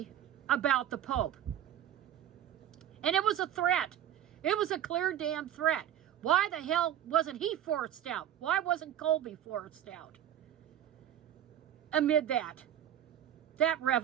about the Pope. And it was a threat. It was a clear damn threat. Why the hell wasn't he forced out? Why wasn't Colby forced out? Amid that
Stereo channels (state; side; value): quieter; left; 11.0 dB